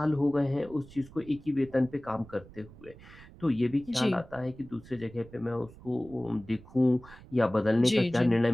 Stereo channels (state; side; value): noise; right; rumble, 20 dB below the sound